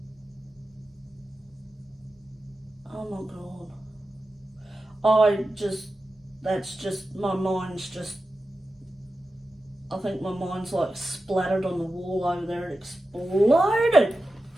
Oh my God. That's just, my mind's just, I think my mind's like splattered on the wall over there. It exploded.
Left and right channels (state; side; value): normal; both; correlation 0.92